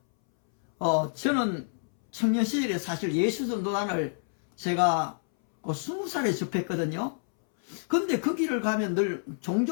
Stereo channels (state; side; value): silent; right; 59 dB below the other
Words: 저는 청년 시절에 사실 예수전도단을 제가 20살에 접했거든요. 근데 그 길을 가면 늘